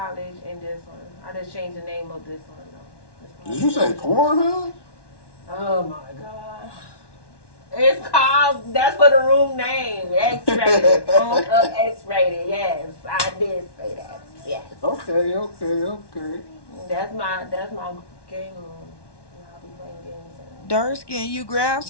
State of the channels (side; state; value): right; late; 1.1 ms